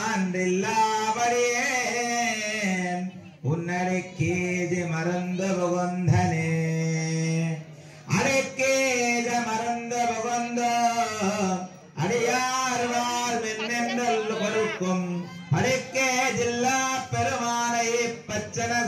உன்னடிக்கேஜி மறந்த புகந்தனே அடிக்கேஜ மறந்த புகந்த அடியார்வார் மின்னென்றல் பொறுக்கும் அடிக்கே ஜில்லா பெருமானை பச்சன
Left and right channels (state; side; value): identical; both; correlation 1.00